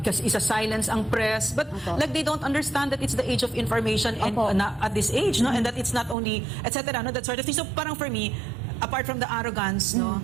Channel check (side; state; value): left; drops out; at 6.2 s